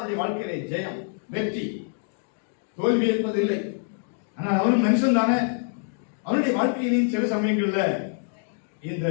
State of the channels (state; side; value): silent; right; 61 dB below the other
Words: வாழ்க்கையில ஜெயம், வெற்றி, தோல்வி என்பதில்லை. ஆனால் அவனும் மனுஷன் தானே. அவனுடைய வாழ்க்கையிலும் சில சமயங்கள்ல இந்த